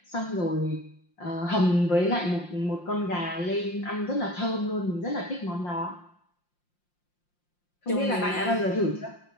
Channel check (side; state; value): right; late; 5.7 ms